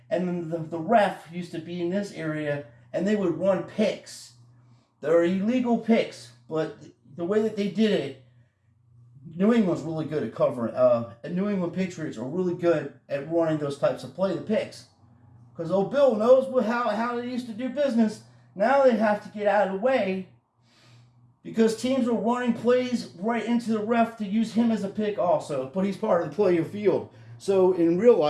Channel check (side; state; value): both; identical; correlation 1.00